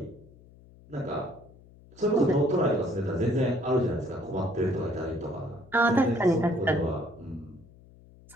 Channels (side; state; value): left; noise; hum, 24 dB below the sound